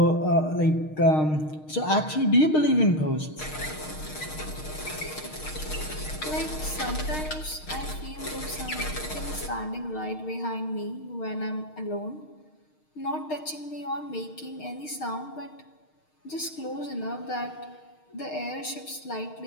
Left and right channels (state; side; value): late; right; 6.5 ms